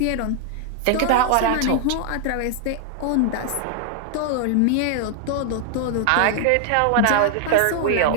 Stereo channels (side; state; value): both; different; correlation 0.00